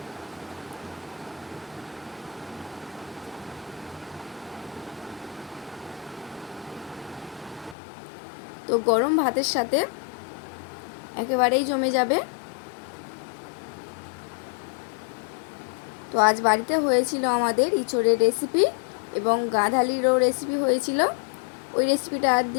তো গরম ভাতের সাথে একেবারেই জমে যাবে। তো আজ বাড়িতে হয়েছিল আমাদের ইঁচড়ের রেসিপি এবং গাঁধালিরও রেসিপি হয়েছিল। ওই রেসিপিটা আর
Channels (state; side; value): drops out; right; at 7.8 s